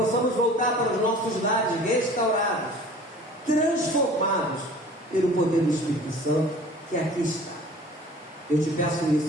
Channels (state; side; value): normal; both; correlation 0.46